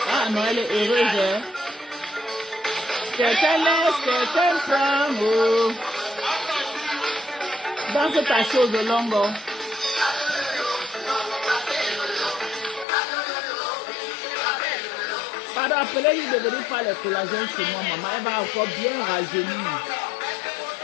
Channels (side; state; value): right; drops out; at 12.9 s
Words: Ah non, elle est heureuse. Hein? Quelqu'un laisse, quelqu'un prend. Oh. Danse ta chose longue. Pardon, appelez-lui de venir faire le collagène chez moi, maman. Elle va encore bien rajeunir.